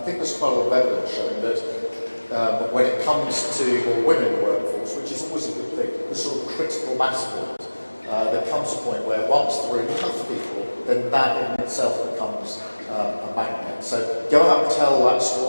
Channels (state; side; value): inverted; both; correlation -1.00